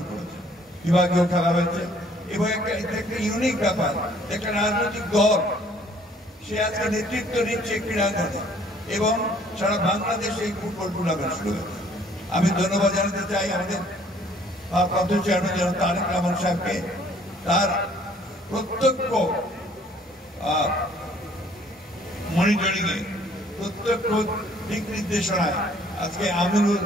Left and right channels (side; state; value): both; normal; correlation 0.59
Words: করেছে, বিভাগীয় খেলা হয়েছে এবং একটা ইউনিক ব্যাপার, একটা রাজনৈতিক দল সে আজকে নেতৃত্ব নিচ্ছে ক্রীড়াঙ্গনে এবং সারা বাংলাদেশে এই ফুটবল টুর্নামেন্ট শুরু হয়েছে। আমি ধন্যবাদ জানাতে চাই আমাদের ভারপ্রাপ্ত চেয়ারম্যান জনাব তারেক রহমান সাহেবকে, তার প্রত্যক্ষ মনিটরিংয়ে, প্রত্যক্ষ দিক নির্দেশনায় আজকে আমিনুল